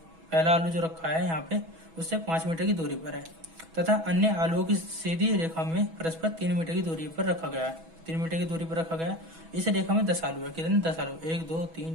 आलू जो रखा है यहाँ पे उससे 5 मीटर की दूरी पर है, तथा अन्य आलुओं की सीधी रेखा में परस्पर 3 मीटर की दूरी पर रखा गया है। 3 मीटर की दूरी पर रखा गया है। इस रेखा में 10 आलू है। कितने? 10 आलू। 1 2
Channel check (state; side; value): late; left; 6.1 ms